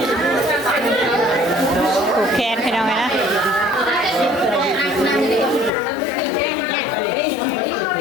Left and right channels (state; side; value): drops out; right; at 5.7 s